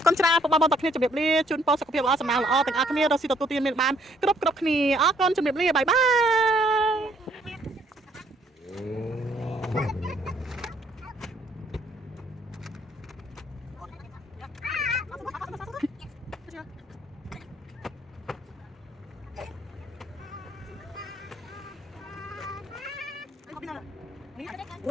គុណច្រើនពុកបងប្អូនទាំងគ្នាជម្រាបលាជូនពរសុខភាពល្អសំណាងល្អទាំងអស់គ្នារកស៊ីទទួលទានមានបានគ្រប់គ្នាអរគុណជម្រាបលាបាយបា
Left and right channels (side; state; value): both; normal; correlation 0.66